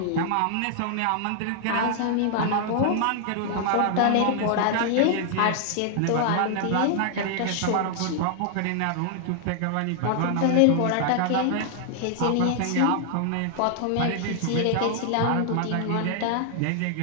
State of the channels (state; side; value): different; both; correlation 0.00